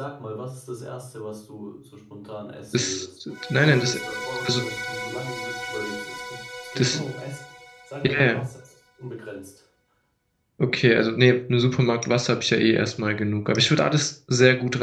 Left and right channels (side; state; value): both; identical; correlation 1.00